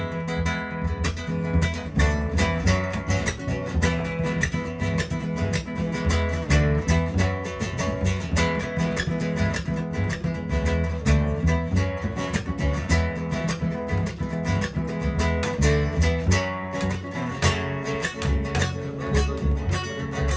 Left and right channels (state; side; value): identical; both; correlation 1.00